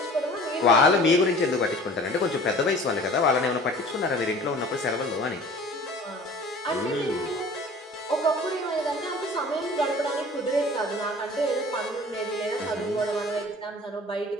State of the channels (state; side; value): normal; both; correlation 0.45